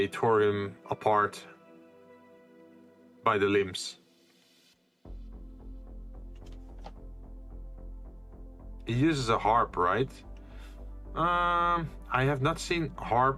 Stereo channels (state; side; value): identical; both; correlation 1.00